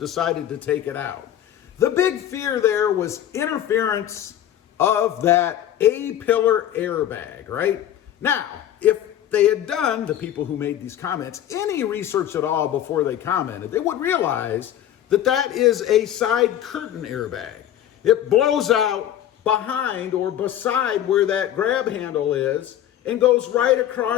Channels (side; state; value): right; quieter; 11.4 dB